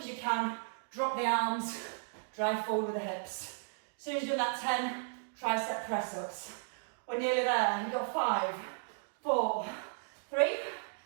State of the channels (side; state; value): left; silent; digital silence